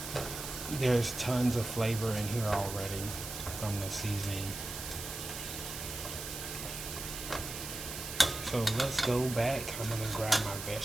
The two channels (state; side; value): noise; right; hiss, 7 dB below the sound